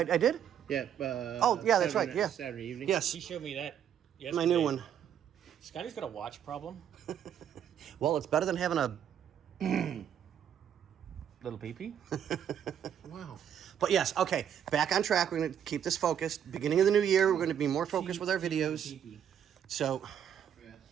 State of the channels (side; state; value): left; quieter; 9.2 dB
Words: I did. Yeah. Oh, yeah, that's right, yeah. Saturday evening. Yes, He showed me that yesterday. my new one. Scotty's got a watch problem. Well, it's better than having a. Little peepee. Wow. But yes, okay, back on track. We're going to keep this focused. Beginning of the new year, we're going to be more focused with our videos. So